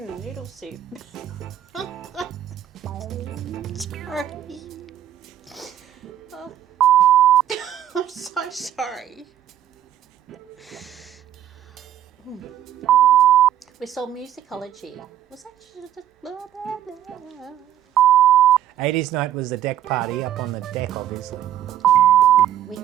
Noodle soup. Sorry. Oh. I'm so sorry. We saw musicology. Was that just blah, blah, blah. 80s night was the deck party up on the deck, obviously.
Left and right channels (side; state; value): left; quieter; 11.3 dB